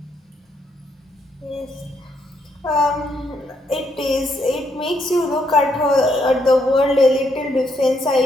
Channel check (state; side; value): normal; both; correlation 0.75